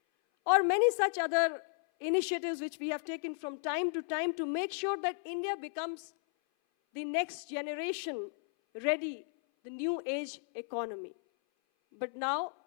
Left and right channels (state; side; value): silent; right; 55 dB below the other